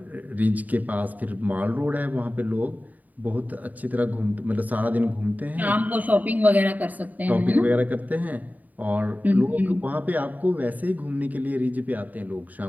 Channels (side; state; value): left; late; 0.079 ms